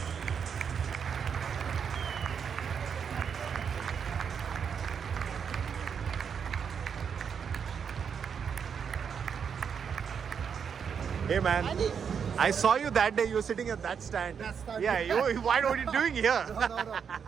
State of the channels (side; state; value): left; quieter; 7.0 dB